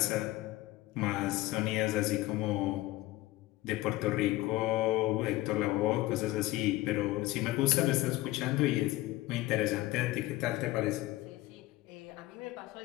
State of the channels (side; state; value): right; quieter; 17.6 dB